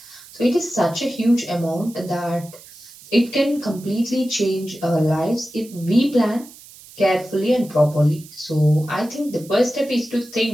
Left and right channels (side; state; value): right; noise; hiss, 20 dB below the sound